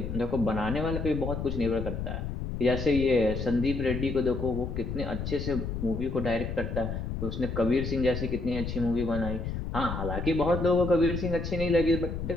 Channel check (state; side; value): noise; left; rumble, 4 dB below the sound